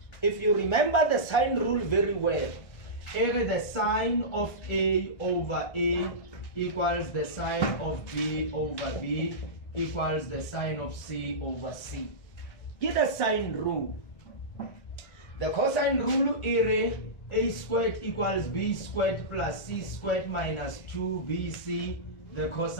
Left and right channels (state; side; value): late; right; 1.6 ms